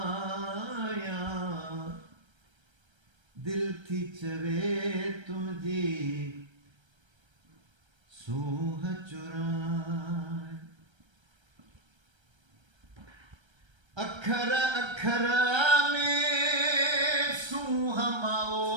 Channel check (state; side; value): late; left; 1.3 ms